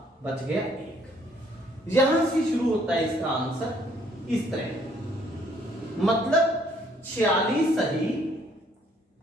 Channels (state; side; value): normal; both; correlation 0.64